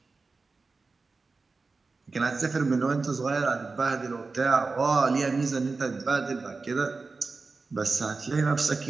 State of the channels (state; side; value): quieter; left; 4.0 dB